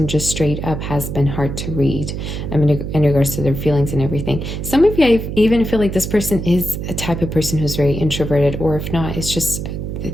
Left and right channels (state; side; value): noise; right; hum, 5 dB below the sound